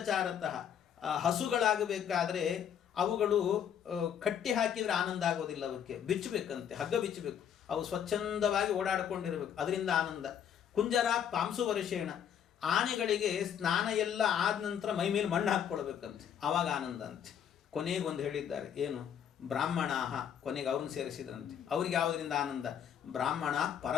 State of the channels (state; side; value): quieter; right; 8.9 dB